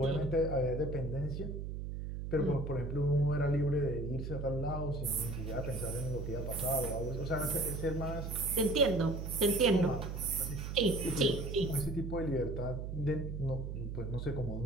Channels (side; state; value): right; noise; hum, 5 dB below the sound